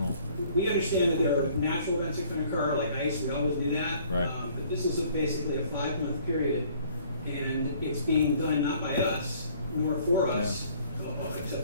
We understand that there are natural events that can occur, like ice, we always do that. Right. But this is basically a 5-month period, and it's being done not by us, nor for us,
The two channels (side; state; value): both; inverted; correlation -0.57